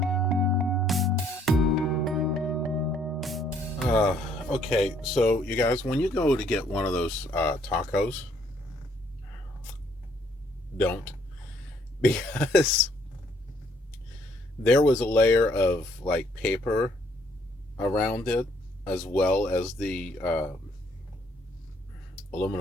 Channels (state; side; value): normal; both; correlation 0.65